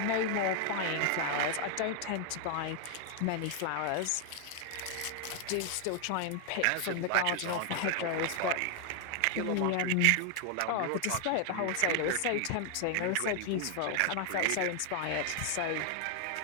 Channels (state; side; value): different; both; correlation 0.00